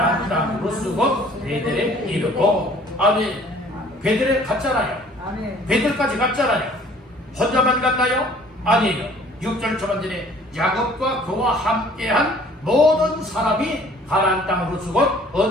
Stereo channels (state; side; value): normal; both; correlation 0.54